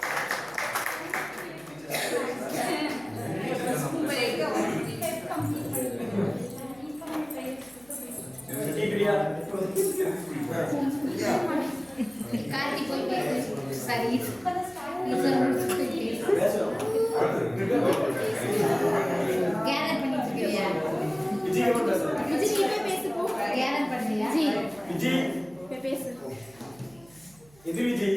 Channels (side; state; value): right; noise; hum, 27 dB below the sound